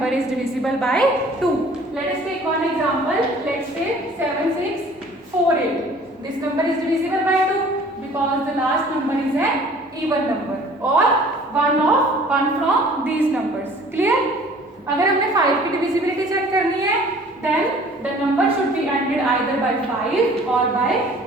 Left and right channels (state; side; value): normal; both; correlation 0.51